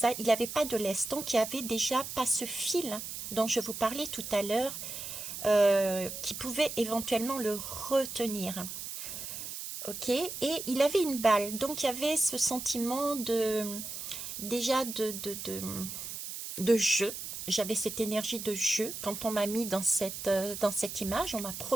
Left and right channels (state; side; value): noise; right; hiss, 7 dB below the sound